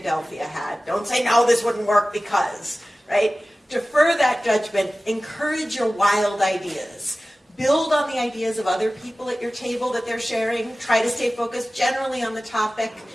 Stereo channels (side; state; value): both; normal; correlation 0.97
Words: hat. Don't say, no, this wouldn't work because, right? Defer that judgment, encourage your wild ideas. Build on the ideas of other people at your table that they're sharing. Try to stay focused generally on the topic,